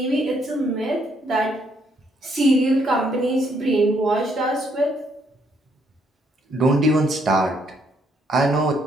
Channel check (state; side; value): normal; both; correlation 0.71